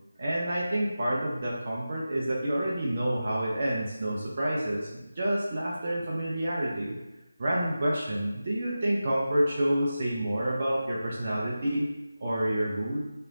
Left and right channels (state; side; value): inverted; both; correlation -0.94